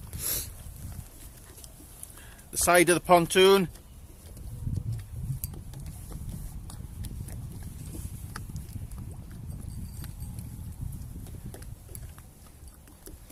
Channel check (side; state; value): both; identical; correlation 1.00